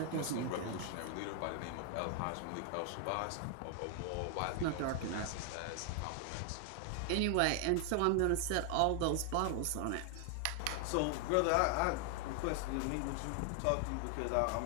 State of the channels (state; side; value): different; both; correlation 0.00